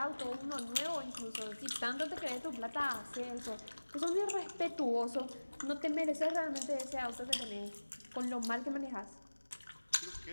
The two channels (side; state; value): both; inverted; correlation -1.00